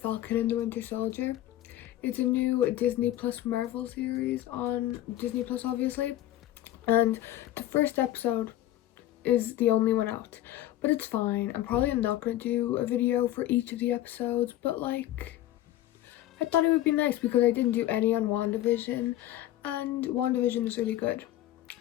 and the Winter Soldier. It's a new Disney Plus Marvel series on Disney Plus, obviously. And the first episode is the only one out, but it's fine. I'm probably not going to do a video for each of the episodes, but like, I thought it would be nice because I didn't do any on WandaVision, and WandaVision is really good.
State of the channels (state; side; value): quieter; right; 14.0 dB